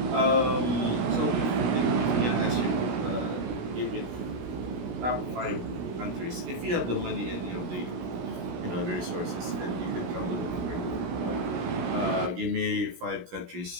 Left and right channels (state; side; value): late; left; 16 ms